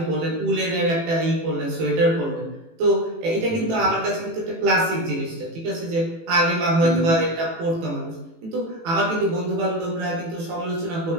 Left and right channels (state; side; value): late; left; 18 ms